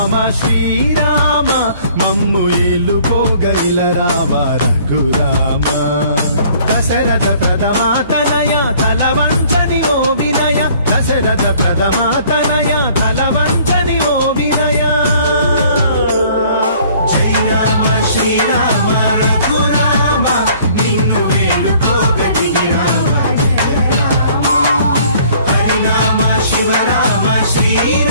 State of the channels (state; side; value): inverted; both; correlation -0.56